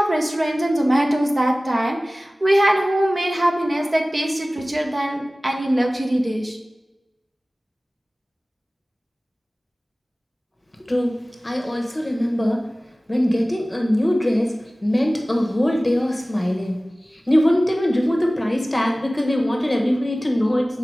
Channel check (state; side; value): normal; both; correlation 0.98